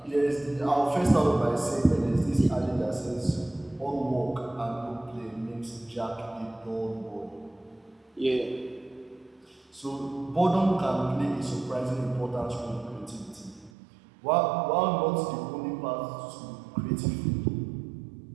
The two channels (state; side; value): drops out; left; at 13.7 s